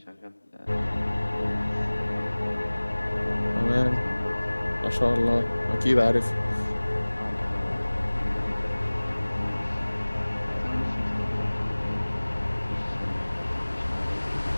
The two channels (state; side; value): inverted; both; correlation -1.00